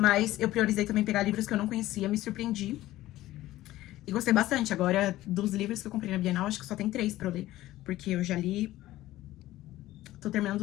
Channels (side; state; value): right; quieter; 15.7 dB